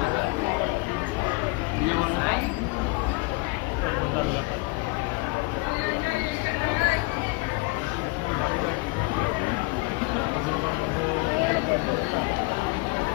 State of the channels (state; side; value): quieter; right; 26.1 dB